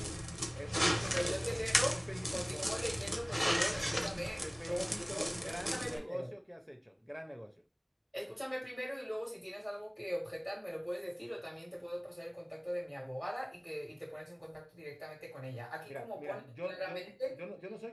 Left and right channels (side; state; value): both; identical; correlation 1.00